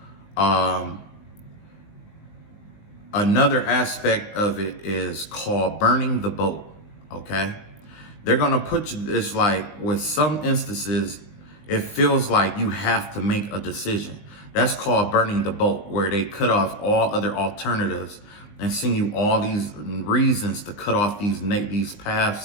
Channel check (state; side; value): late; right; 20 ms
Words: another aspect of it is called burning the boat. Okay, they're gonna put you. It's like with some instances, it feels like you have to make a decision. That's called burning the boat, where they cut off all other alternatives and send you all these reasons to cut off these